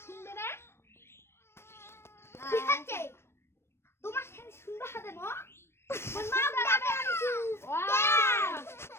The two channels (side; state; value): right; late; 0.12 ms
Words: শুনবে না ঠিক আছে তোমার সাথে সুন্দর হবে মা মা যাবে